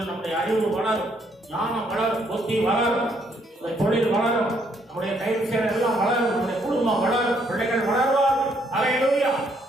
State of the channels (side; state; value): both; normal; correlation 0.70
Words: நம்முடைய அறிவு வளரும், ஞானம் வளரும், புத்தி வளரும், தொழில் வளரும், நம்முடைய கைது செயல் எல்லாம் வளரும், நம்முடைய குடும்பம் வளரும், பிள்ளைகள் வளர்வார்கள். அல்லேலூயா.